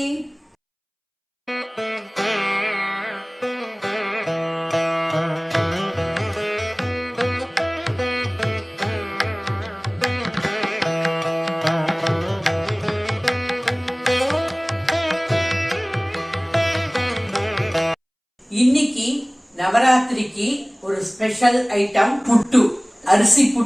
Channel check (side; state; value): both; identical; correlation 1.00